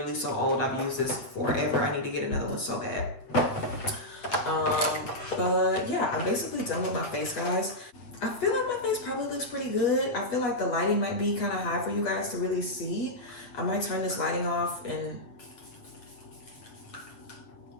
so old. I've used this forever. I need to get another one so bad. But yeah, I'm basically done with my face, guys. I feel like my face probably looks pretty good. I feel like the lighting might be kind of high for you guys to really see. I might turn this lighting off and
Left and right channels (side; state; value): right; late; 8.0 ms